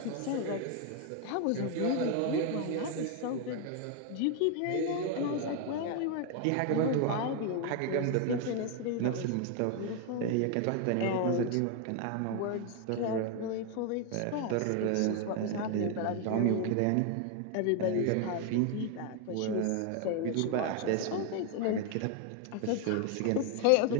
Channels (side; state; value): both; different; correlation 0.01